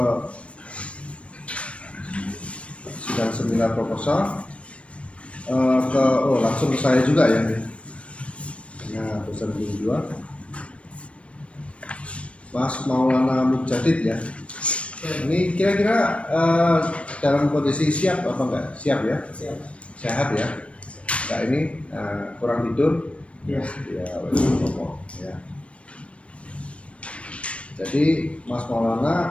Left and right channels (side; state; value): right; late; 0.062 ms